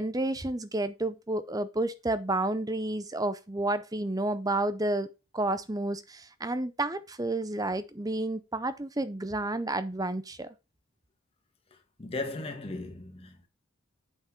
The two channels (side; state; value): both; normal; correlation 0.58